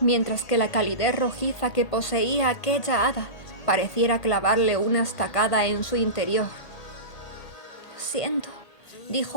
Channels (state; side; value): late; right; 1.8 ms